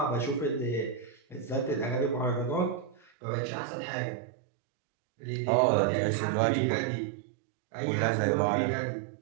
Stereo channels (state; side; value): drops out; left; at 3.0 s